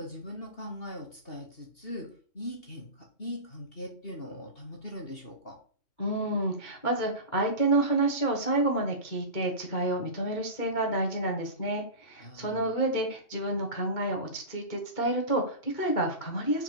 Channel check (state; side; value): late; right; 2.7 ms